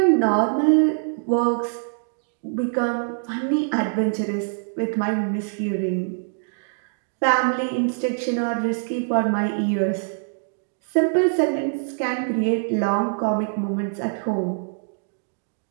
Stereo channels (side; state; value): left; silent; digital silence